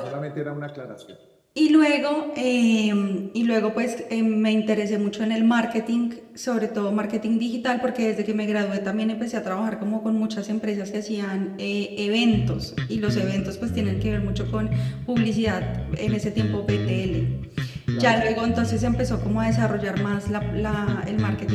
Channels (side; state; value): both; identical; correlation 1.00